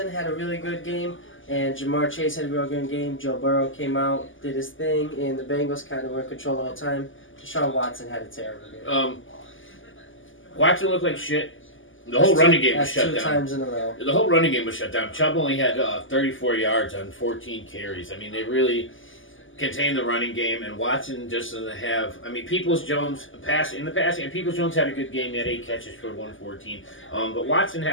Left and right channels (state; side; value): late; right; 0.58 ms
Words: had a really good game. And Jamar Chase had a real good game. Joe Burrow came out, did his thing, and the Bengals kind of were in control the whole time. Deshaun Watson had a terrible game. Watson looked like shit. The whole running game was shut down. 2 times in a row. The whole running game was shut down. Chubb only had 34 yards on 14 carries. They really contained the running game, and Watson just doesn't have. Peoples-Jones and Peoples-Jones had a good game. He had 8 catches for 114. But Watson